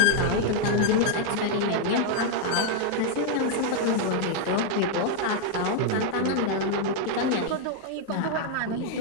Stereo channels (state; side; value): different; both; correlation 0.00